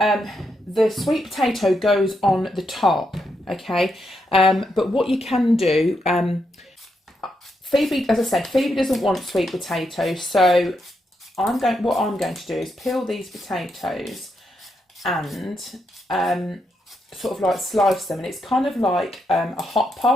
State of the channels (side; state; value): both; normal; correlation 0.81